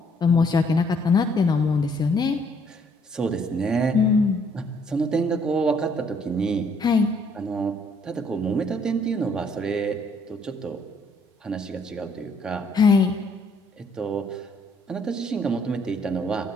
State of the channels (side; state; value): both; normal; correlation 0.66